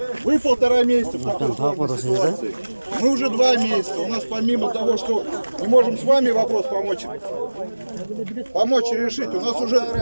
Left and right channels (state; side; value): inverted; both; correlation -1.00